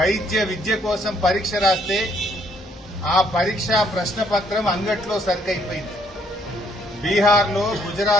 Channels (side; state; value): both; normal; correlation 0.68